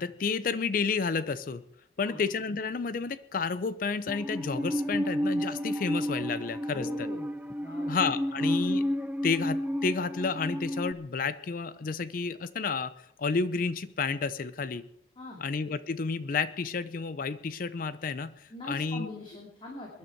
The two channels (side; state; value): right; quieter; 3.2 dB